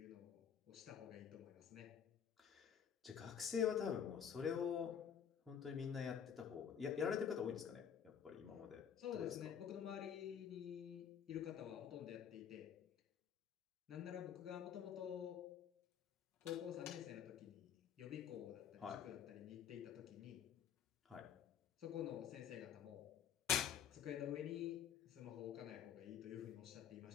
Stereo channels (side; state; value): right; quieter; 8.4 dB